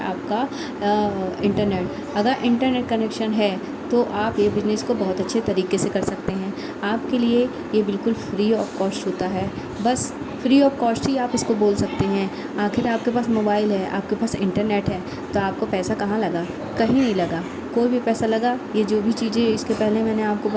आपका इंटरनेट। अगर इंटरनेट कनेक्शन है तो आप ये बिज़नेस को बहुत अच्छे तरीके से कर सकते हैं। आपके लिए ये बिल्कुल फ्री ऑफ कॉस्ट होता है, बस फ्री ऑफ कॉस्ट ही आप इसको बोल सकते हैं। आखिर आपके पास मोबाइल है, आपके पास इंटरनेट है, तो आपको पैसा कहाँ लगा? कहीं नहीं लगा, कोई भी पैसा लगा। ये जो भी चीज़ें इसके पहले मैंने आपको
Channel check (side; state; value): both; identical; correlation 1.00